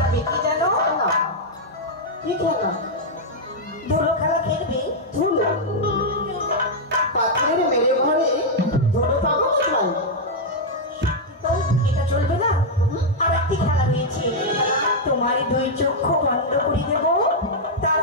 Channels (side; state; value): both; normal; correlation -0.03